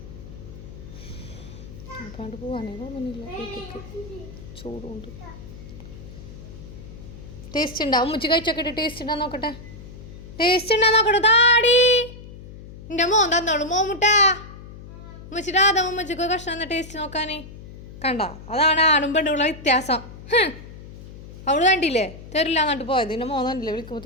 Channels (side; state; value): left; noise; hum, 15 dB below the sound